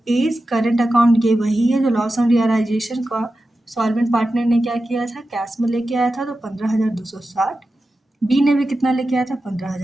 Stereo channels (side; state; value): both; normal; correlation 0.92